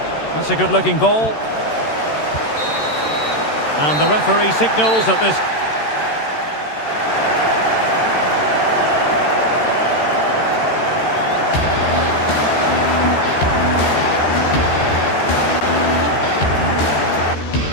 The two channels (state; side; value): late; right; 13 ms